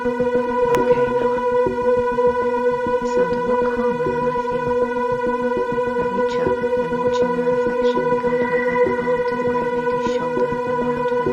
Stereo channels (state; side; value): identical; both; correlation 1.00